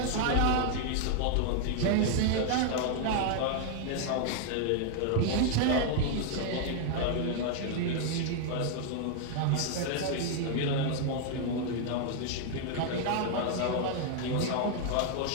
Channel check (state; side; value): different; both; correlation 0.00